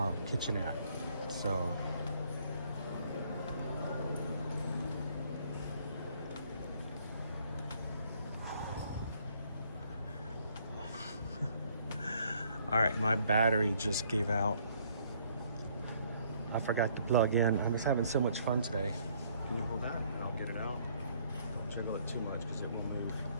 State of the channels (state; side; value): inverted; both; correlation -0.64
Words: kitchenette. So all right, my battery just gave out. I forgot to plug in. I was having so much fun today. Can you hold that? I'll get it out. Don't jiggle it too much because it will move.